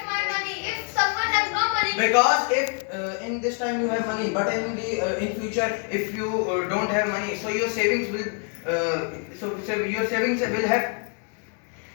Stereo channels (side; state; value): right; quieter; 38.3 dB